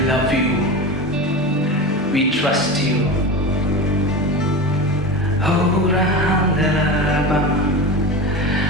love you. We trust you. Oh,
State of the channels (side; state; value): both; normal; correlation 0.26